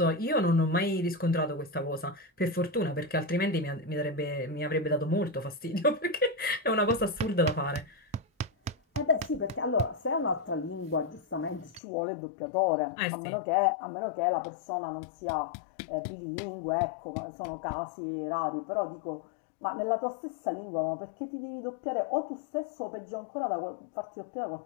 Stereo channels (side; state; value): right; drops out; at 11.8 s